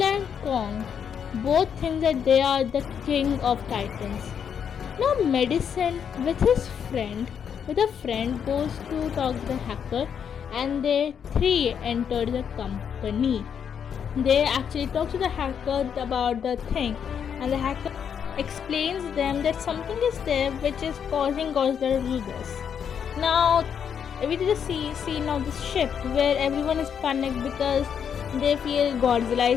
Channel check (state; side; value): quieter; right; 7.7 dB